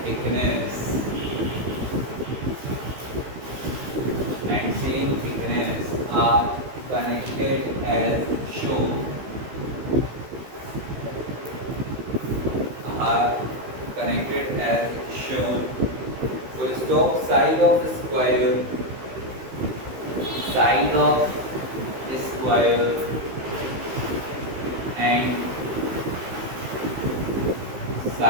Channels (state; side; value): late; left; 15 ms